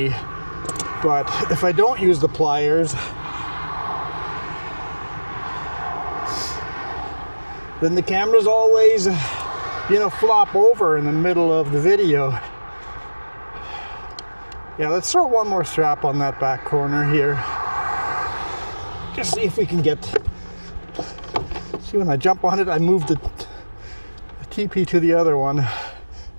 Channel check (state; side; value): inverted; both; correlation -1.00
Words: But if I don't use the pliers, then the camera's always, flop over in the middle of the video. Yeah, let's throw one more strap on that back corner here. Just see if we can get, see when I jump on it, I move the TP to the other one.